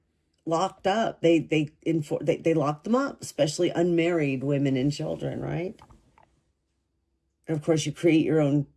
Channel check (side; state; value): both; identical; correlation 1.00